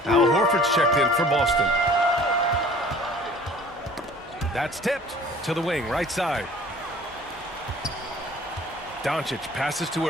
Al Horford's checked in for Boston. That's tipped to the wing, right side. Doncic passes to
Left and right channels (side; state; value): both; normal; correlation 0.49